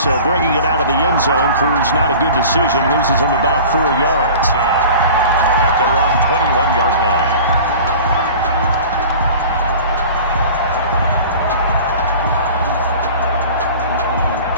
bringing it out of the end zone proves not a good decision. Loses him about 4 yards. At their own 21-yard line.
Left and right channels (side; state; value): both; inverted; correlation -0.40